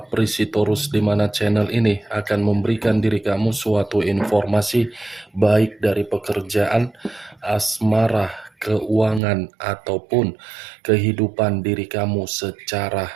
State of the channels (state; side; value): drops out; left; at 9.2 s